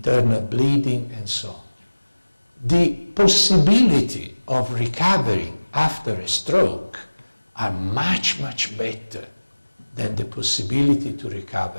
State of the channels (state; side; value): inverted; both; correlation -1.00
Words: bleeding and so on. The possibility of recovering after a stroke are much, much better than the possibility to